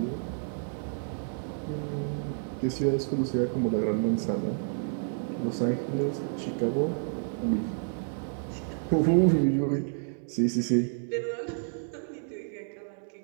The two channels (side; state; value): left; silent; 58 dB below the other